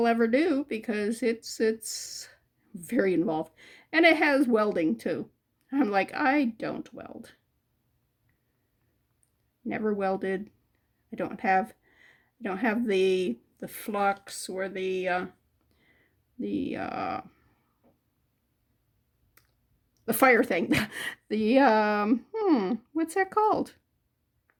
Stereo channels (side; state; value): both; identical; correlation 1.00